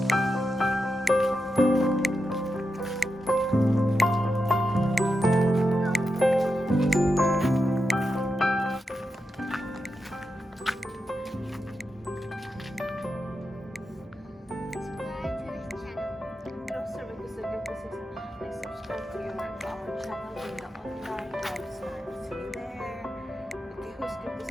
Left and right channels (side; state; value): both; normal; correlation 0.87